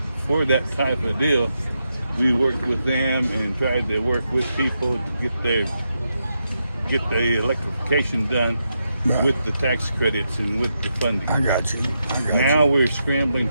for that type of deal, we worked with them and tried to work with people to get the electrification done with the tax credits and with the funding. I got you. Now we're scrambling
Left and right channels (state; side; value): inverted; both; correlation -0.84